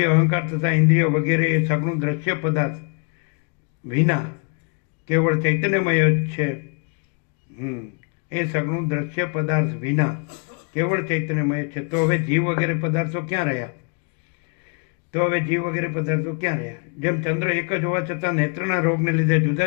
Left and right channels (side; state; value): right; quieter; 37.5 dB